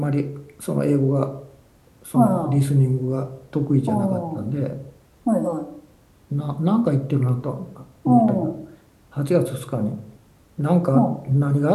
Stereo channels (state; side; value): identical; both; correlation 1.00